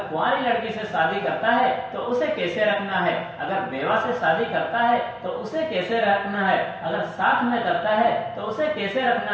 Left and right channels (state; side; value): identical; both; correlation 1.00